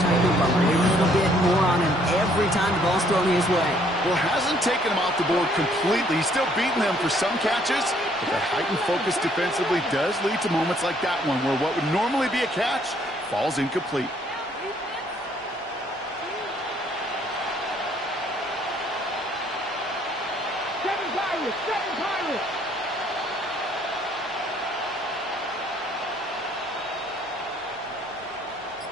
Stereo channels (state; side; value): normal; both; correlation 0.64